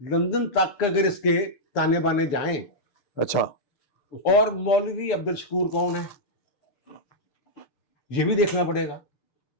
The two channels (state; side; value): late; right; 6.8 ms